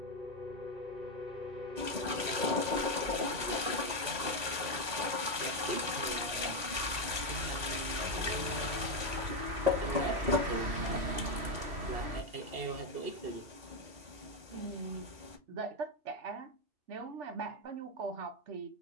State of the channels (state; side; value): late; left; 1.9 ms